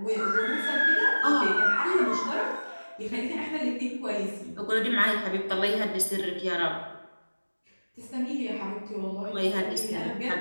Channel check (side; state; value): both; inverted; correlation -1.00